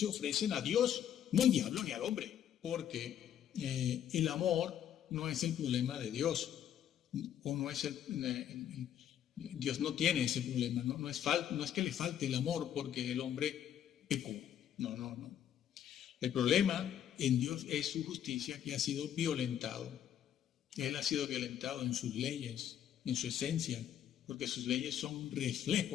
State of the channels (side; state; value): right; quieter; 10.2 dB